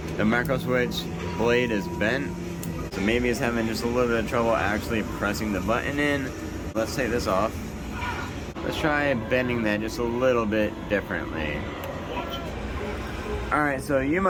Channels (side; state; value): both; identical; correlation 1.00